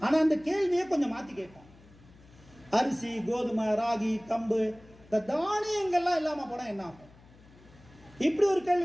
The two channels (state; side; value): noise; left; hum, 25 dB below the sound